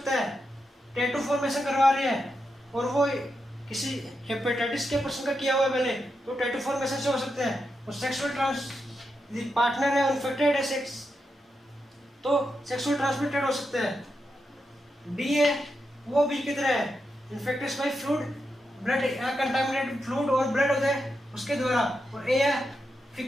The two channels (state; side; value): normal; both; correlation 0.86